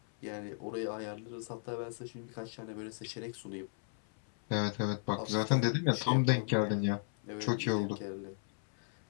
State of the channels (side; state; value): right; silent; 54 dB below the other